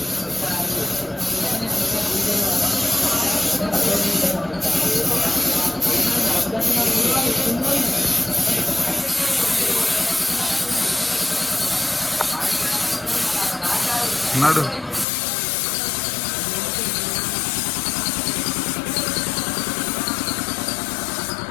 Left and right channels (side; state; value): right; drops out; at 15.1 s